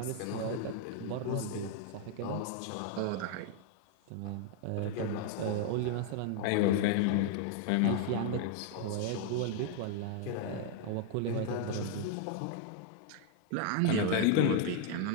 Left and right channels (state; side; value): different; both; correlation 0.00